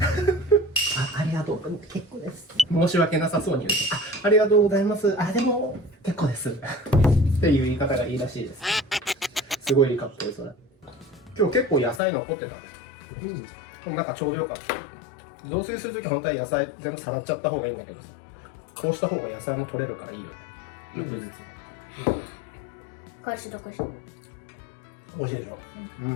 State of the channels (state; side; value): drops out; right; at 12.0 s